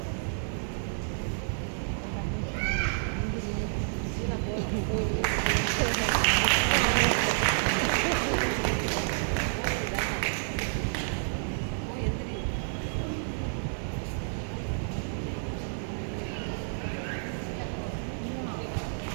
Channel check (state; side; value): silent; left; 58 dB below the other